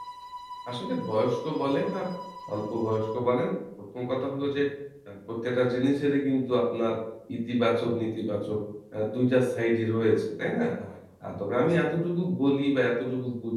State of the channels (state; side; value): identical; both; correlation 1.00